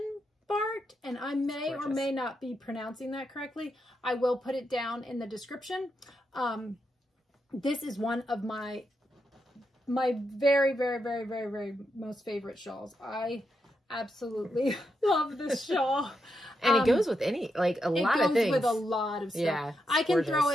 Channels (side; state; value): both; normal; correlation 0.84